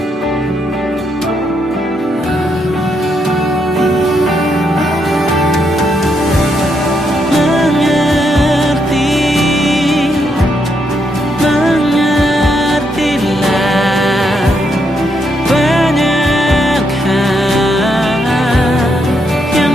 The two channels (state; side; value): normal; both; correlation 0.78